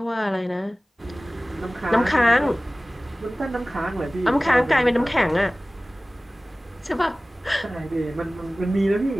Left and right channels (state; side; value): normal; both; correlation 0.98